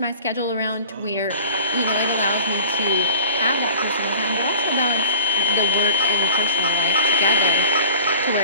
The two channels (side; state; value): both; inverted; correlation -0.46